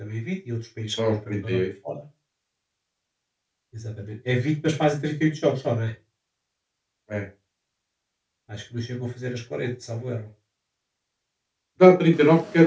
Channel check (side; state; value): both; identical; correlation 1.00